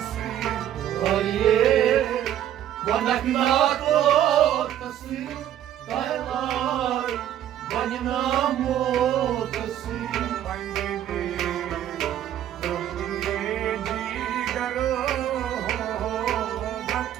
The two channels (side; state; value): left; quieter; 11.3 dB